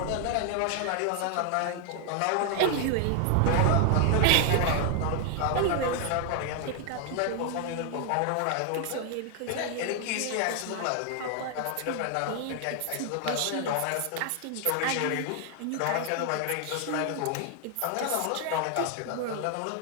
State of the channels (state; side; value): different; both; correlation 0.00